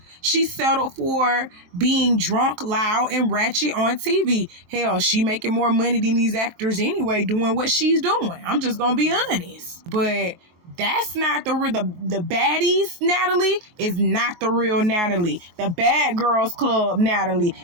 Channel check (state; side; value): late; left; 23 ms